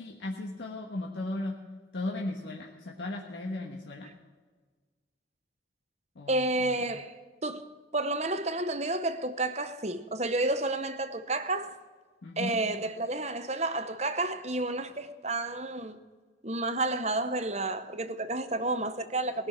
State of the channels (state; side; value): normal; both; correlation 0.06